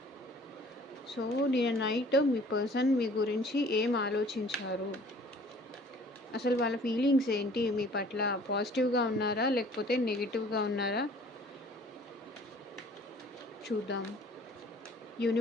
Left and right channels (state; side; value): normal; both; correlation 0.52